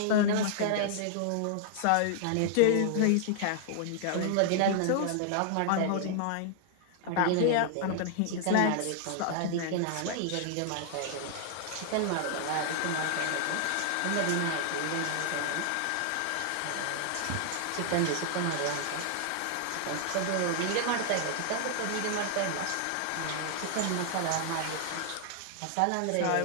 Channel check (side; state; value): both; different; correlation 0.00